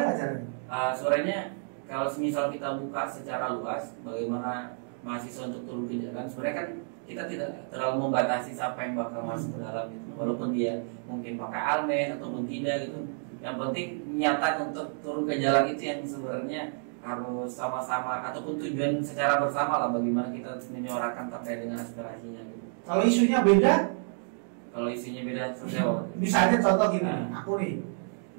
caranya? Suaranya kalau semisal kita buka secara luas bagaimana mahasiswa untuk turun ke jalan, sebenarnya kan kita tidak terlalu membatasi siapa yang bakal masuk ke dalam gitu. Walaupun dia mungkin pakai almen ataupun tidak gitu. Yang penting nyata untuk turun ke jalan itu yang sebenarnya harus sama-sama ataupun tujuan secara bersama lah, bagaimana kita menyuarakan terkait dengan aspirasinya gitu. Kalau isunya beda? Kalau isunya beda seperti apa? Misalnya contoh gini, aku nih,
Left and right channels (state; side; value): silent; left; digital silence